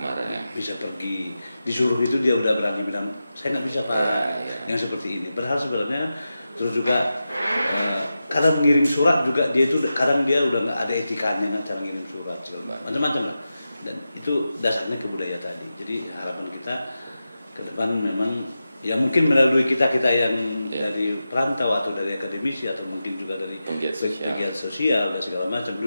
bisa pergi, disuruh itu dia udah berani bilang saya nggak bisa Pak, yang seperti ini. Padahal sebenarnya terus juga kadang mengirim surat juga dia itu kadang dia udah nggak ada etikanya kan cara ngirim surat macam-macam lah, dan itu dasarnya kebudayaan tadi. Jadi harapan kita ke depan memang ya mungkin melalui kita yang dari perantau atau dari akademisi atau mungkin juga dari pegiat sosial dan segala macam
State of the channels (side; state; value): both; inverted; correlation -0.92